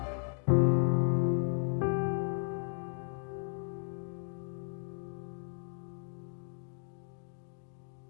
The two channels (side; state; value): right; silent; 54 dB below the other